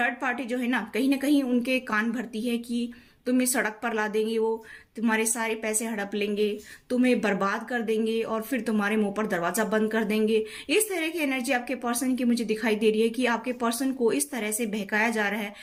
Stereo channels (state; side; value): identical; both; correlation 1.00